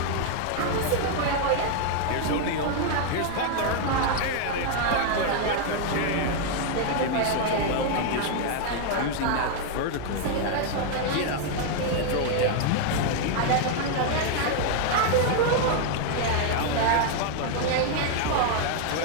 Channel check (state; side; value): different; both; correlation 0.00